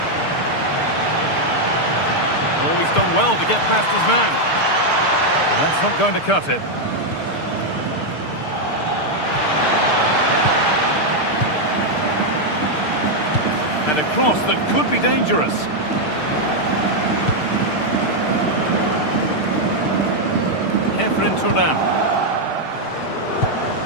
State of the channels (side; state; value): right; late; 6.6 ms